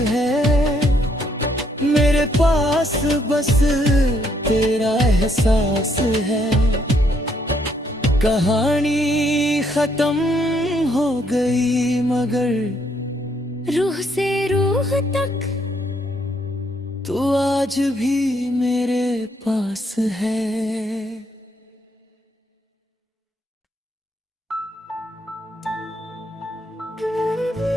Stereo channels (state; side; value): normal; both; correlation 0.71